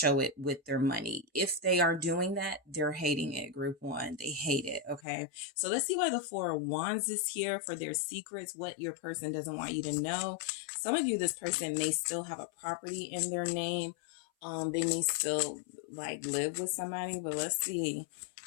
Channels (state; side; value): drops out; right; at 5.0 s